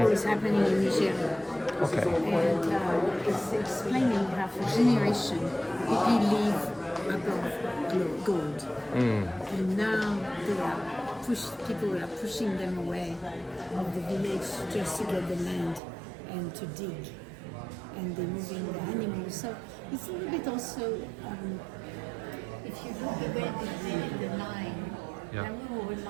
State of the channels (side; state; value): left; drops out; at 15.8 s